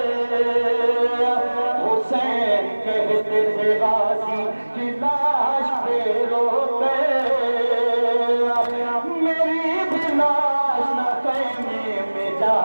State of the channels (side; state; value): both; inverted; correlation -1.00